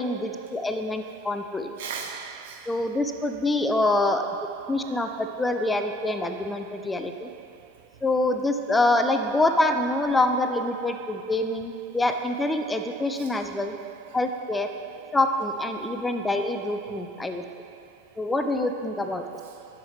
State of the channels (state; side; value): normal; both; correlation 0.67